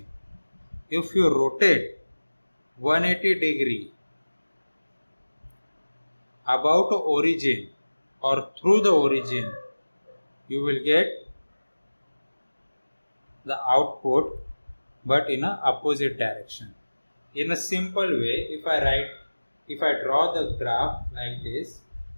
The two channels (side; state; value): both; inverted; correlation -1.00